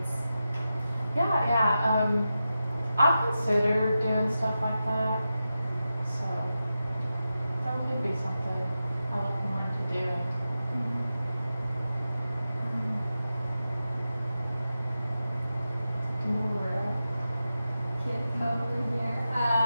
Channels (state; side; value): inverted; both; correlation -0.91